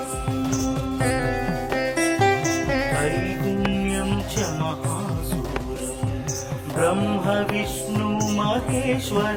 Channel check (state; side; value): identical; both; correlation 1.00